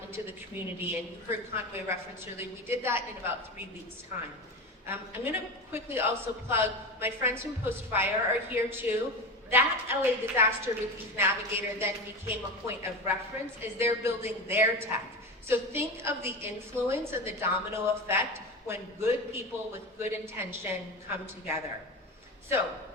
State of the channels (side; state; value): both; normal; correlation 0.24